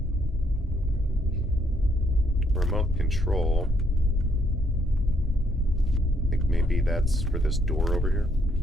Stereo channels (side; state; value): both; normal; correlation 0.71